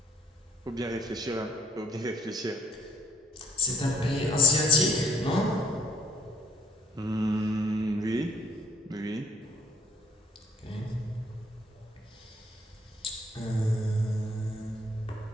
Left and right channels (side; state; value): both; normal; correlation 0.64